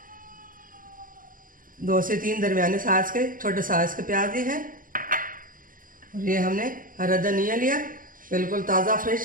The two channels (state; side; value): late; left; 0.40 ms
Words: 2 से 3 दरमियाने साइज के छोटे साइज के प्याज लिए हैं। और ये हमने हरा धनिया लिया, बिल्कुल ताज़ा